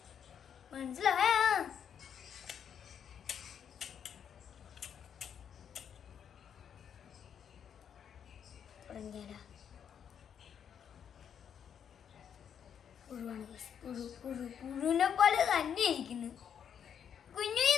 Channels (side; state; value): right; quieter; 8.2 dB